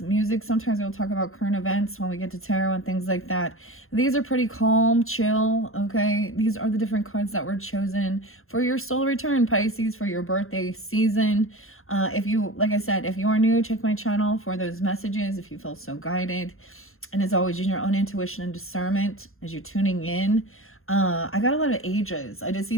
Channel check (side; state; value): right; late; 0.61 ms